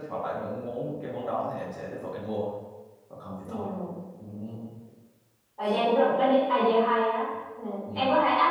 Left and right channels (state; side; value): identical; both; correlation 1.00